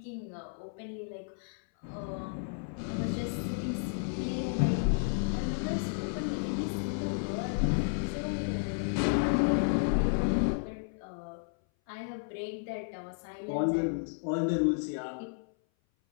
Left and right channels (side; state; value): right; silent; 56 dB below the other